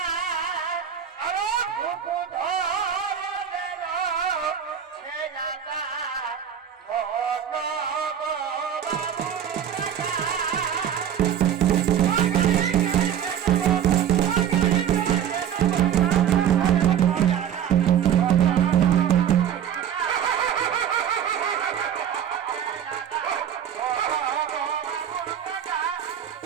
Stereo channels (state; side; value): quieter; left; 9.1 dB